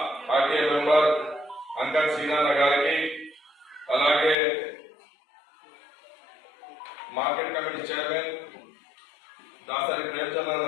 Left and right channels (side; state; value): right; drops out; at 4.4 s